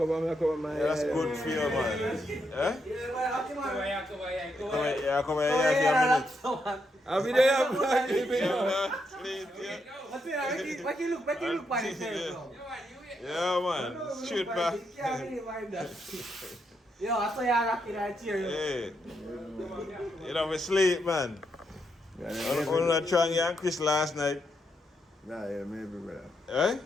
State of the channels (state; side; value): normal; both; correlation 0.80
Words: my Yeah, that's good for you, man. Eh? Yeah, come here. Come here, I'll be there, man. Sleep, yeah. Make you look by yourself. Yeah, man. Shoot back. Yo, I saw you rocking that chair. Hey. You know, we sleep, man. I'm not trying and Chris last night. Nah, yeah, maybe, brother. Eh?